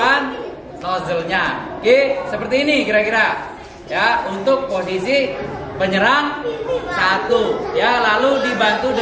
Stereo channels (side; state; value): both; identical; correlation 1.00